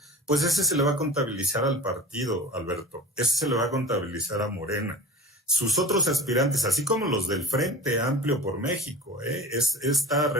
pues ese se le va a contabilizar al partido, Alberto. Ese se le va a contabilizar a Morena. Sus otros aspirantes, así como los del Frente Amplio por México, esta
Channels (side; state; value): both; normal; correlation 0.36